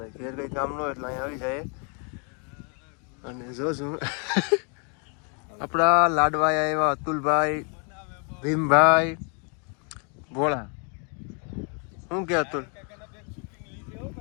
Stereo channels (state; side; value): quieter; right; 37.8 dB